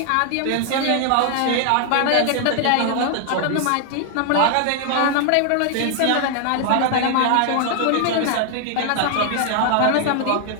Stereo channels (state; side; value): different; both; correlation 0.00